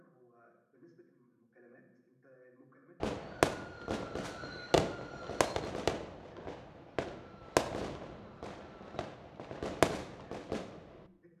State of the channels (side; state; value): both; identical; correlation 1.00